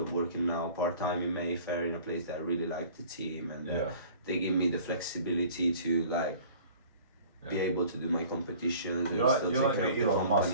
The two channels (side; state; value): both; inverted; correlation -0.47